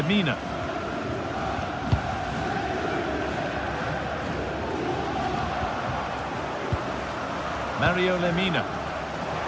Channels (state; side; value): identical; both; correlation 1.00